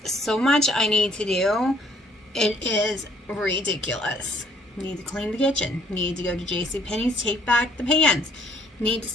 so much I need to do. It is ridiculous. Need to clean the kitchen. Need to go to JCPenney's, take back the pans. Need to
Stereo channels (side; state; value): both; normal; correlation 0.62